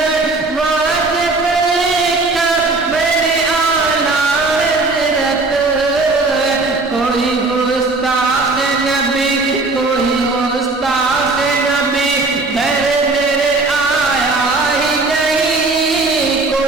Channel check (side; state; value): left; quieter; 3.4 dB